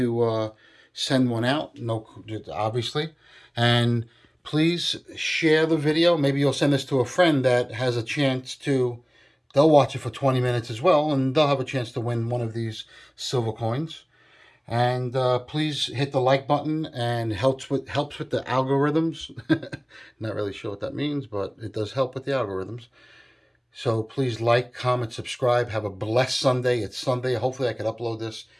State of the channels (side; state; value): both; identical; correlation 1.00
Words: send one out, no, obviously. And please share the video. Maybe you'll send this to a friend that has a chance to, they'll watch it for 20 minutes as well, and they'll have a chance to win one of these silver coins. And please hit the like button, and helps with the algorithms. Not really sure what that means, but it does help with the algorithms. So please like, comment, subscribe. Have a blessed Sunday. It's Sunday. Hopefully I can upload this.